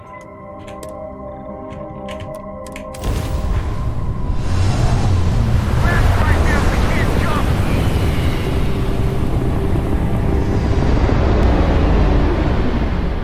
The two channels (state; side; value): identical; both; correlation 1.00